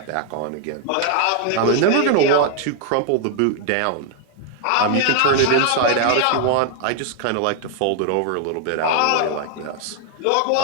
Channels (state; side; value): different; both; correlation 0.00